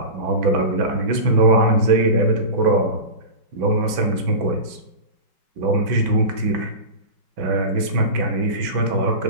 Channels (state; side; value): late; left; 6.0 ms